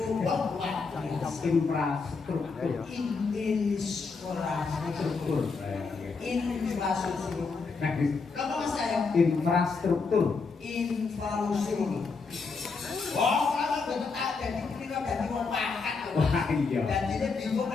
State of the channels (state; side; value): quieter; right; 4.6 dB